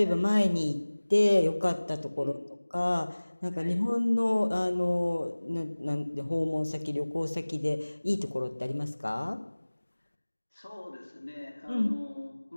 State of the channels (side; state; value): both; inverted; correlation -1.00